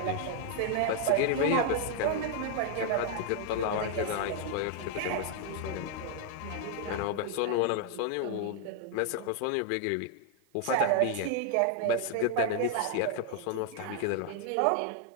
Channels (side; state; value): both; different; correlation 0.00